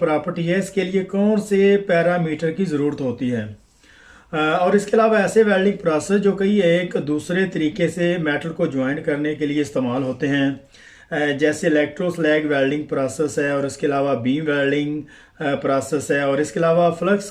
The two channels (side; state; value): both; identical; correlation 1.00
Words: है, इसके लिए कौन से पैरामीटर की ज़रूरत होती है। और इसके अलावा ऐसे वेल्डिंग प्रोसेस जो कई एक दूसरे तरीके से मेटल को ज्वाइन करने के लिए इस्तेमाल होते हैं, जैसे इलेक्ट्रोस्लैग वेल्डिंग प्रोसेस है, और इसके अलावा बीम वेल्डिंग प्रोसेस है, और इसके अलावा flux